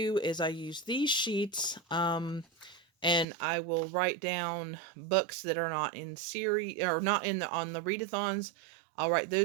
is I use these sheets, and I will write down books that are not in series or not in on the readathons. I'll write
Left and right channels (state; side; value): drops out; left; at 3.2 s